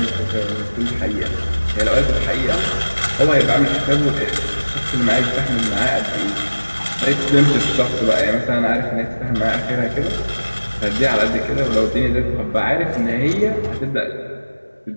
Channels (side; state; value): both; inverted; correlation -1.00